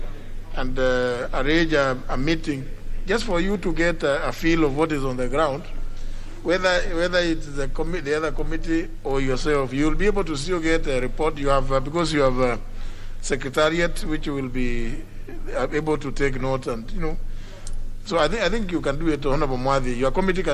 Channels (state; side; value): identical; both; correlation 1.00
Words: and arrange a meeting just for you to get a feel of what is on the ground, whether it's the other committee or yourself, you will be able to still get a report. You have because you have a secretariat which will be able to take note, and so I think you can do it, Honorable Mwadi. Your committee